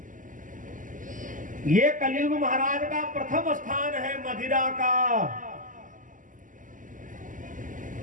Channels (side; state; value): left; late; 0.38 ms